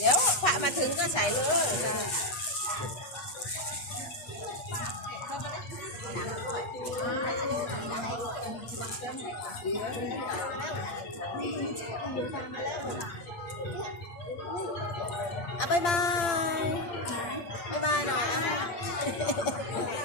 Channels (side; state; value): right; late; 8.6 ms